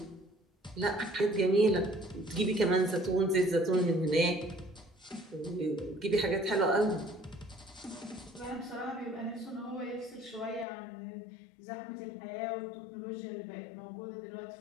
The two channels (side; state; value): right; drops out; at 10.7 s